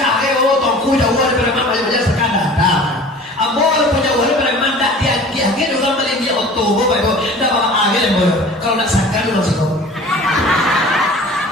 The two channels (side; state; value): both; normal; correlation 0.43